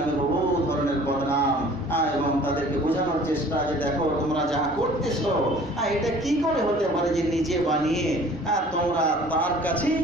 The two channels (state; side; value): normal; both; correlation 0.49